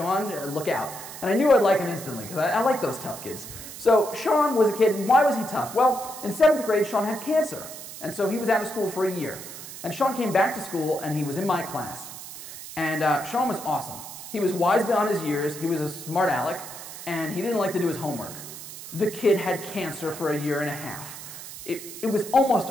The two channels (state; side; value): noise; right; hiss, 12 dB below the sound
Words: look out. And I knew I'd like him instantly, because I like those tough kids. So Sean was a kid, and why was he tough? Well, in 7th grade, Sean had cancer. And so he was out of school for a year. And Sean came back to school, and he was in my class. And Sean was awesome. He was wise beyond his years, he was a smart aleck, and he didn't like to do his homework. The kid had cancer for a year and a half. It was almost